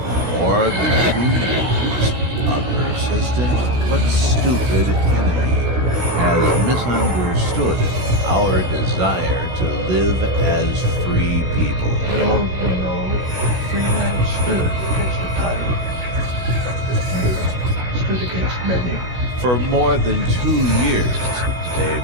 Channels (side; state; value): left; late; 16 ms